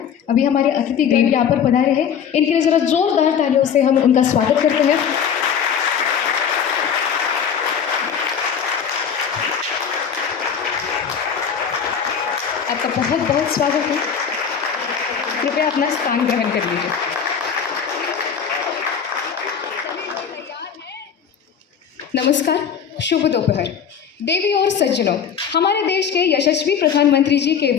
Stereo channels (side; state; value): right; quieter; 7.5 dB